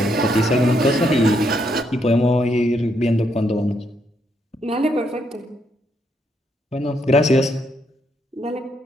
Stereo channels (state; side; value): normal; both; correlation 0.76